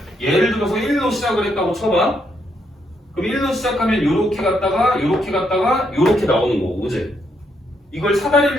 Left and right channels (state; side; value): normal; both; correlation 0.76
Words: 예를 들어서 1로 시작을 했다고 쳐봐. 그럼 1로 시작하면 요렇게 갔다가 요렇게 갔다가 요렇게 나오는 거고 그지? 이걸